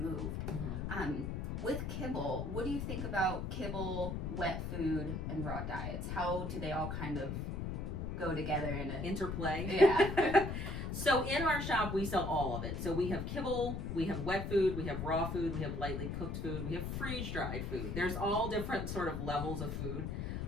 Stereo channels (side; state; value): left; noise; rumble, 3 dB below the sound